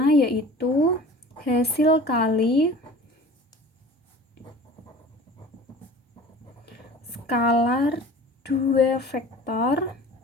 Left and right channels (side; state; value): both; normal; correlation 0.42